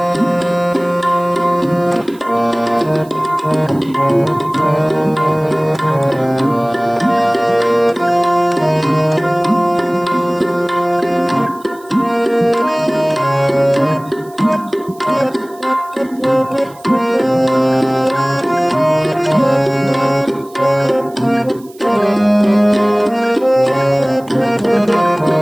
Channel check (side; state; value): right; noise; hiss, 26 dB below the sound